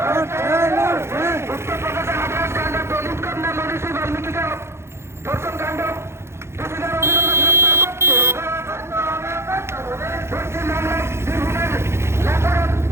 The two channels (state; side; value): late; left; 0.13 ms